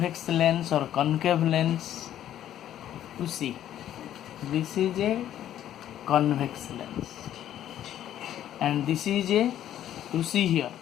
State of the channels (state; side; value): quieter; right; 11.5 dB